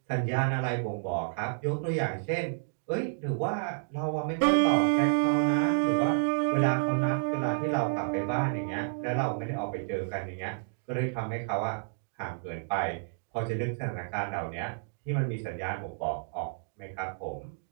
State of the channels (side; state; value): left; silent; digital silence